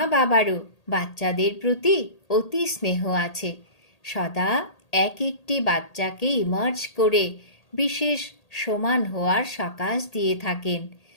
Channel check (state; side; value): late; right; 1.8 ms